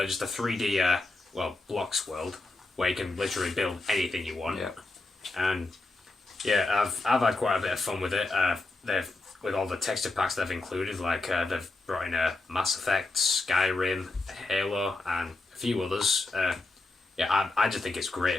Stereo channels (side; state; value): right; quieter; 3.2 dB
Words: just a 3D blocks world where you can literally build anything you want. Yeah. And yeah, I've had quite a bit of fun with it. With all the texture packs they've included, like they've brought in Mass Effect, Skyrim, Halo, and a few others. I just think it's